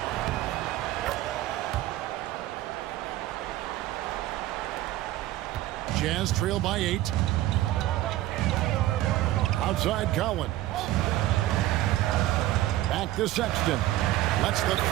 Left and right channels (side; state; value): left; quieter; 15.4 dB